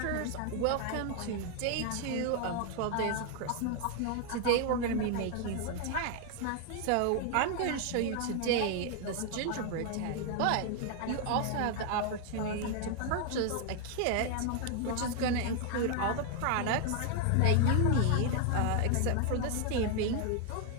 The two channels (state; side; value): different; both; correlation 0.00